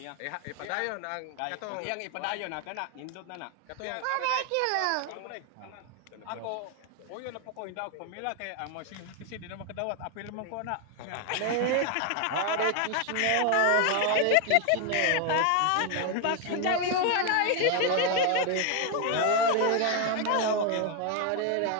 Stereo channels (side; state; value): both; different; correlation 0.01